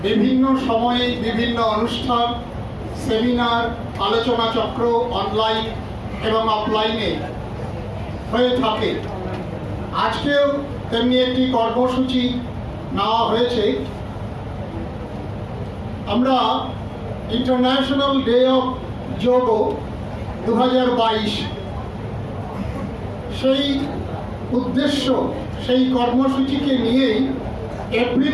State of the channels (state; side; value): identical; both; correlation 1.00